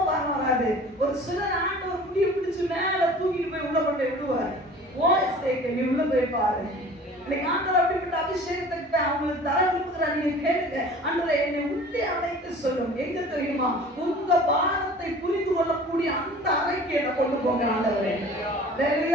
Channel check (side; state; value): both; normal; correlation 0.44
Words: வாரம் வராது. ஒரு சிலர் ஆண்டவர் முடிய பிடிச்சு மேல தூக்கிட்டு போய் உள்ள கொண்டு விடுவார். நீ உள்ள போய் பாரு. இன்னைக்கு ஆண்டவர் அப்படிப்பட்ட அபிஷேகத்தை அவங்களுக்கு தர விரும்புகிறார். நீங்க கேளுங்க, ஆண்டவரே என்னை உள்ளே அழைத்து சொல்லும். எங்க தெரியுமா? உங்க பாரத்தை புரிந்து கொள்ளக்கூடிய அந்த அறைக்கு என்ன கொண்டு போங்க ஆண்டவரே.